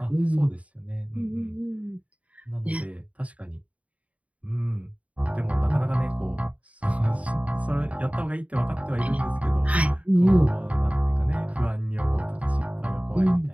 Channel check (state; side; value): late; left; 0.067 ms